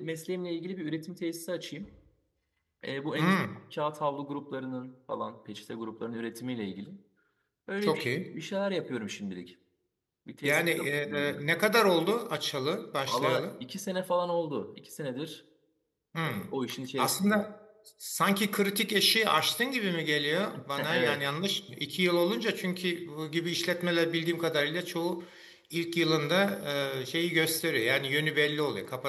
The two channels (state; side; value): identical; both; correlation 1.00